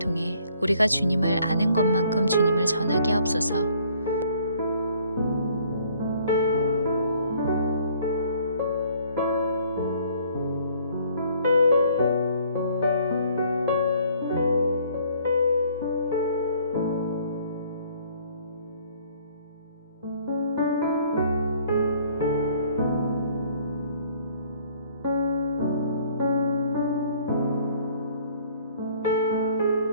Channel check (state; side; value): inverted; both; correlation -0.59